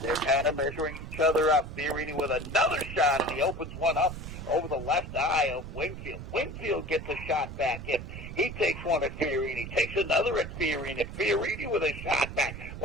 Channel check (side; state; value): right; noise; rumble, 9 dB below the sound